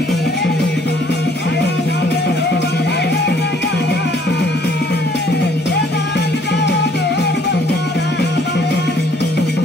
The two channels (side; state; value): both; normal; correlation 0.62